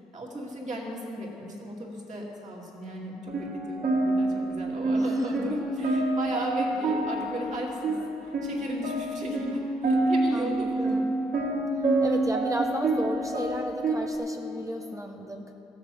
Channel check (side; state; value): both; normal; correlation 0.75